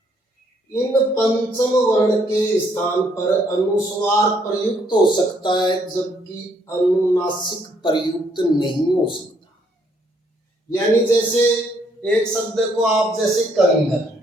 इन पंचम वर्ण के स्थान पर अनुस्वार प्रयुक्त हो सकता है, जबकि अनुनासिक प्रयुक्त नहीं हो सकता। यानी जैसे एक शब्द को आप जैसे कंगन,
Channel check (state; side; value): normal; both; correlation 0.69